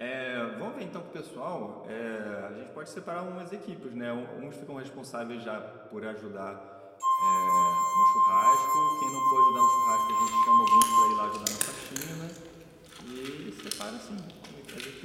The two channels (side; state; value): both; identical; correlation 1.00